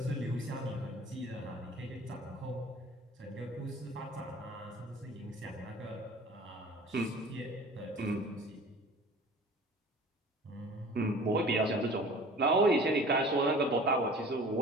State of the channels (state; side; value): normal; both; correlation 0.44